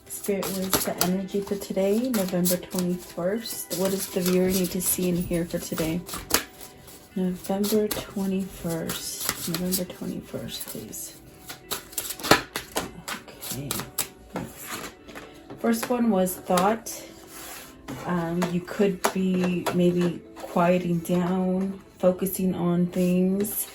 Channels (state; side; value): identical; both; correlation 1.00